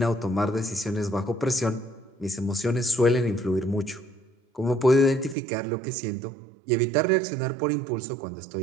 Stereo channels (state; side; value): drops out; left; at 5.4 s